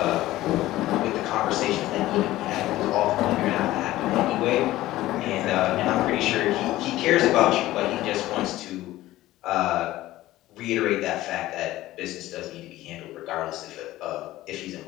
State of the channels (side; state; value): right; quieter; 16.0 dB